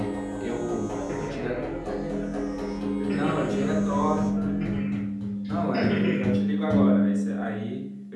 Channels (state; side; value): identical; both; correlation 1.00